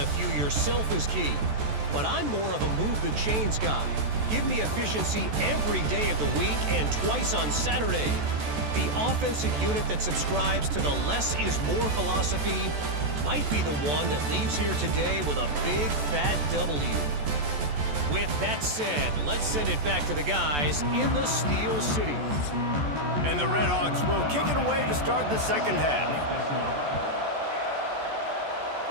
few yourself is key. But I'm more of a move the chains guy. Give me efficiency every day of the week and twice on Saturday. The offensive unit that subscribes to the less is more philosophy might be the one that leaves here today with a big fat W. With that said, let's send it back to the guys in the Steel City. And the Red Hawks will kick it away to start the second half.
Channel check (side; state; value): left; late; 14 ms